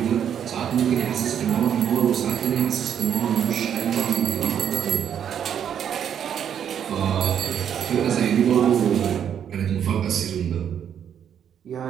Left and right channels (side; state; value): left; quieter; 8.9 dB